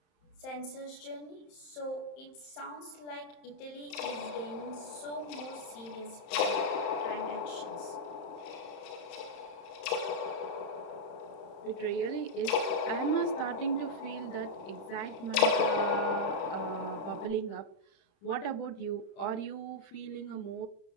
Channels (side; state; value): right; late; 31 ms